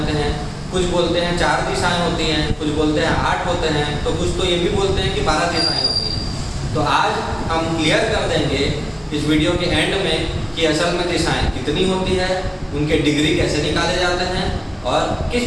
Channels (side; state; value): both; identical; correlation 1.00